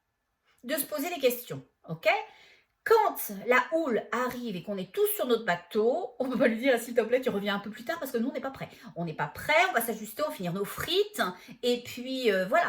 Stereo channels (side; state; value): both; identical; correlation 1.00